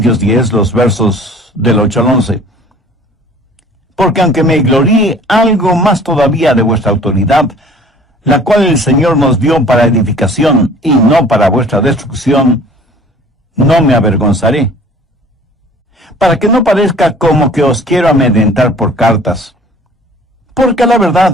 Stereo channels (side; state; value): both; normal; correlation 0.50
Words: 10, los versos del 8 al 11. Porque aunque me gloríe algo más todavía de vuestra autoridad, la cual el Señor nos dio para edificación y no para vuestra destrucción, no me avergonzaré, para que no parezca como que os quiero amedrentar por cartas. Porque a la